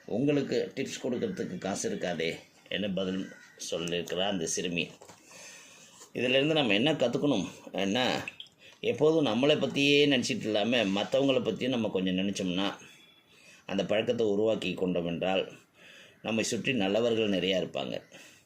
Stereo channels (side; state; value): both; identical; correlation 1.00